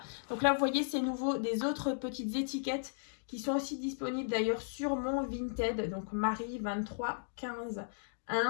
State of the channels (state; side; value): silent; right; digital silence